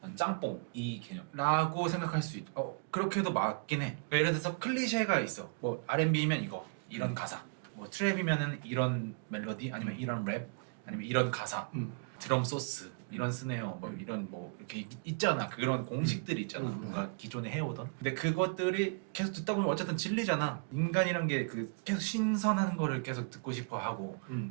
난 짬뽕 이 개념. 라고 생각할 수 있. 그렇게도 맞긴 해. 그러니까 예를 들어서 클리셰가 있어. 뭐 R&B면 이거 이런 가사. 뭐 트랩이면은 이런 멜로디 아니면 이런 랩 아니면 이런 가사. 드럼 소스 이런 스네어 뭐 이런 뭐 이렇게 있잖아. 그런 공식들이 있잖아. 뭔가 기존에 해오던. 근데 그것들이 계속 듣다 보면 어쨌든 질리잖아. 인간이란 게 그 계속 신선한 거를 계속 듣고 싶어 하고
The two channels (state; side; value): quieter; left; 36.5 dB